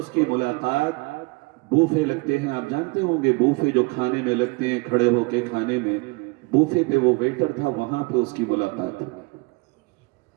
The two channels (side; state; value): left; quieter; 27.1 dB